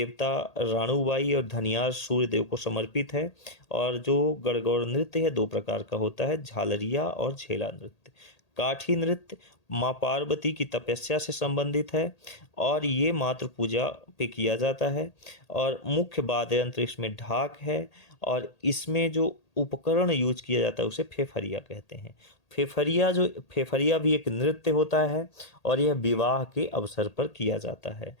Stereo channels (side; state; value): right; late; 1.8 ms